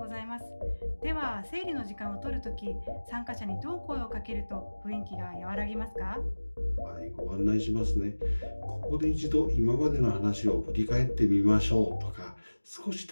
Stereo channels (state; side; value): inverted; both; correlation -1.00